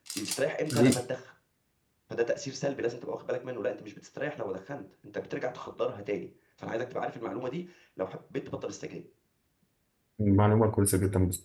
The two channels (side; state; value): both; identical; correlation 1.00